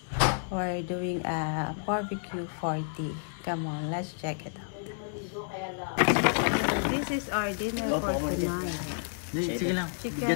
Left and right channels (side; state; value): right; silent; 58 dB below the other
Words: We're doing a barbecue 40. Come on, let's check it out. This is our dinner for tonight. Chicken